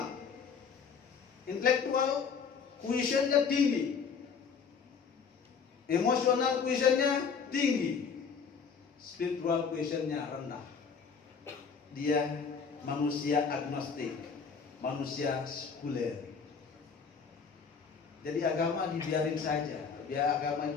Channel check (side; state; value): right; quieter; 6.0 dB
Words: intelektual quotient-nya tinggi, emosional quotient-nya tinggi, spiritual quotient-nya rendah. Dia manusia agnostik, manusia sekuler. Jadi agama dibiarin saja. Dia agama